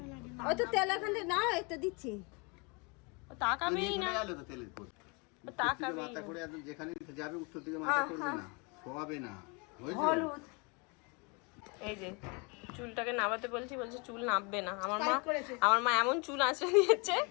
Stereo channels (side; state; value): right; quieter; 31.1 dB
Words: ওই তো তেল এখানে না, এটা দিচ্ছি। তাকাবেই না, তাকাবেই মাথা করে একদম যেখানে যাবে উত্তর দিকে মাথা করবে না, শোয়াবে না। হলুদ এই যে চুলটাকে নামাতে বলছি, বলছে চুল নামবে না। আমার মা এমন চুল আঁচড়ে দিয়েছে,